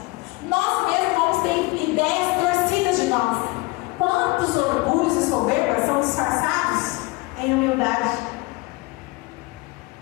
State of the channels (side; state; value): right; quieter; 23.5 dB